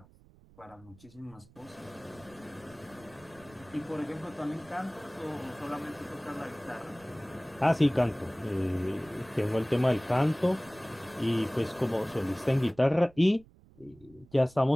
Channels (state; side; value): noise; right; rumble, 25 dB below the sound